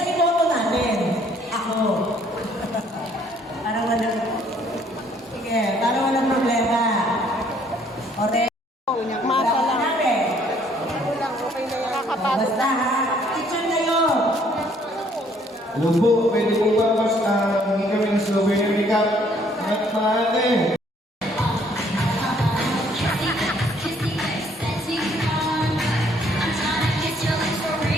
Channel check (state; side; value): normal; both; correlation 0.63